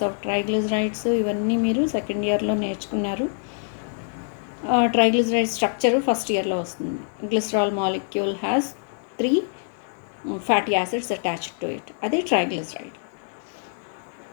of triglycerides ఇవన్నీ మీరు సెకండ్ ఇయర్లో నేర్చుకున్నారు. ట్రైగ్లిజరైడ్ స్ట్రక్చర్ ఫస్ట్ ఇయర్లో వస్తుంది. Glycerol molecule has 3 fatty acids attached to it. Adi triglyceride.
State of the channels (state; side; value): silent; right; 62 dB below the other